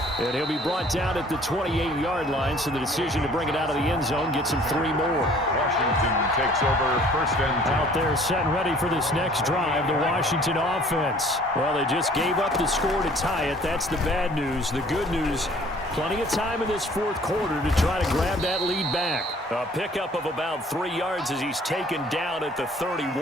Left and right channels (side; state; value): both; normal; correlation 0.54